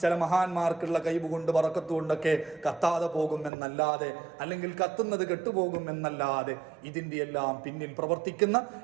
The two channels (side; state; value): left; drops out; at 3.5 s